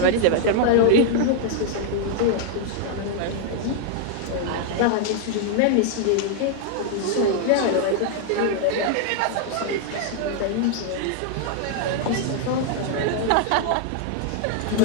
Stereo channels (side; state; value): both; different; correlation 0.00